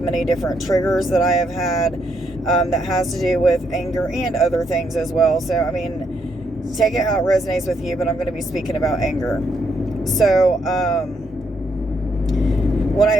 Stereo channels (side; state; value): both; normal; correlation 0.75